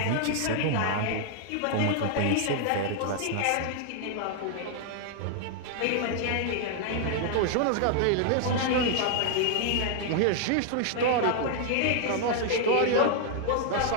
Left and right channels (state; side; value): different; both; correlation 0.00